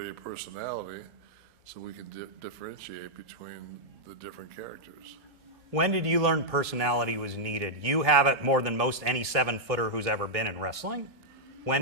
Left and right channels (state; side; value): late; left; 1.1 ms